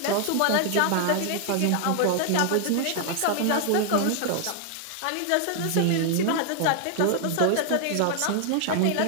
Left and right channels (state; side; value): different; both; correlation 0.00